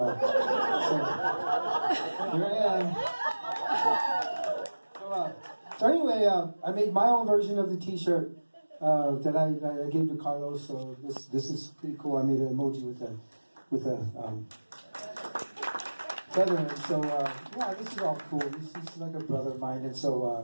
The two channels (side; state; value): both; inverted; correlation -1.00